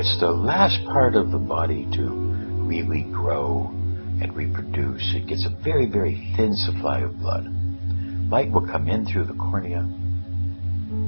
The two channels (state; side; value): inverted; both; correlation -1.00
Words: the last part of the body to really grow and reproduce. It gets a very, very thin supply of blood. Light will come in through the cornea